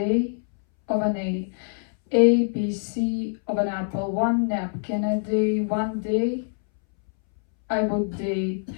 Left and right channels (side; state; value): right; silent; 62 dB below the other